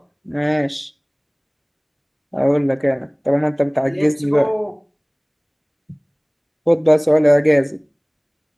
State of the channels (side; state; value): both; identical; correlation 1.00